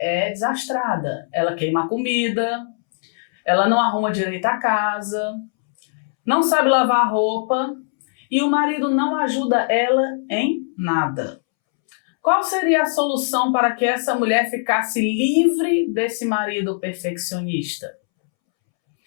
desastrada. Ela queima a comida, ela não arruma direito a casa, não sabe lavar a roupa e o marido não ajuda ela em nada. Qual seria a solução para que essa mulher ficasse livre desse marido perfeccionista?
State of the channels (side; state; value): right; silent; 65 dB below the other